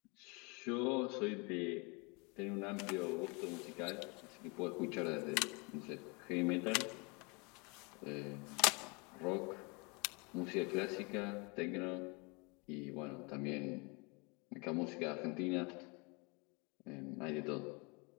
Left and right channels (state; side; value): quieter; right; 30.1 dB